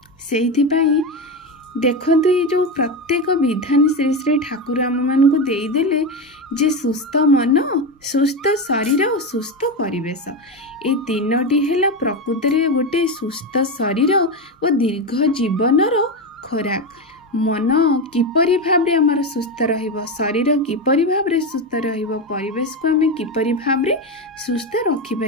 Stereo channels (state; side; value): normal; both; correlation 0.15